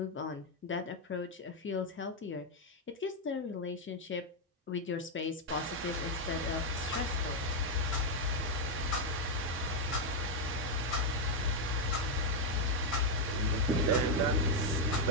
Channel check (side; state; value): both; normal; correlation 0.01